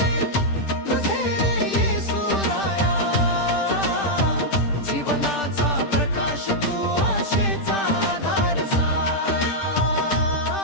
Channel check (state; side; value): late; right; 10 ms